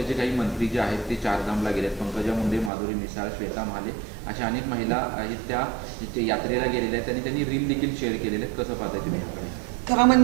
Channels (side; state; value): left; drops out; at 2.7 s